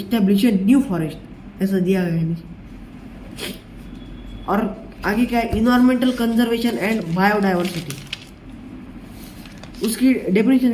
a new forest, ऐसा दिया गया है नीचे। और आगे क्या है, इन्वायरमेंटल कंजर्वेशन एंड बायोडाइवर्सिटी। उसकी डेफिनेशन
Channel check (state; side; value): identical; both; correlation 1.00